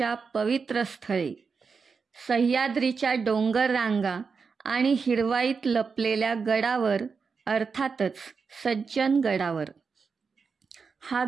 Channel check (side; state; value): left; quieter; 5.3 dB